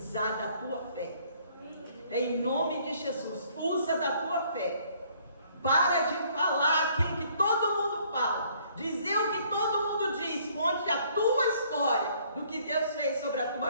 da tua fé. Em nome de Jesus, usa da tua fé. Para de falar aquilo que todo mundo fala. Dizer o que todo mundo diz. Conte a tua história do que Deus fez sobre a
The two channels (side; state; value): both; inverted; correlation -0.62